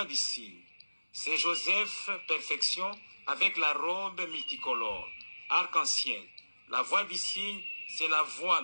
du signe. C'est Joseph, perfection, avec la robe multicolore, arc-en-ciel. La voix du signe, c'est la voix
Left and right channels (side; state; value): both; inverted; correlation -1.00